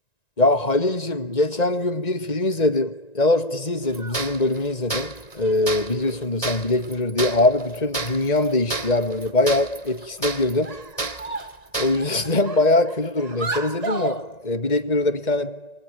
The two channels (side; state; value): right; late; 1.9 ms